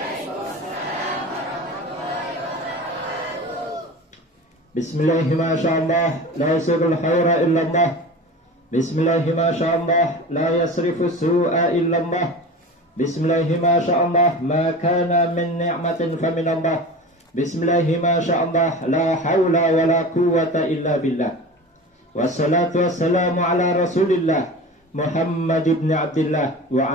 Bismillahi ma sya'allah la yasirul khaira illallah. Bismillahi ma sya'allah la yasrifu su'a illallah. Bismillahi ma sya'allah ma kana min ni'matin faminallah. Bismillahi ma sya'allah la hawla wa la quwwata illa billah. Wassalatu wassalamu ala rasulillah Muhammad ibn Abdullah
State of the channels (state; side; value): normal; both; correlation 0.33